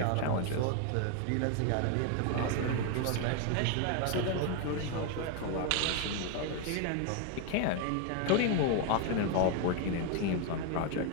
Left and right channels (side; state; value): both; different; correlation 0.01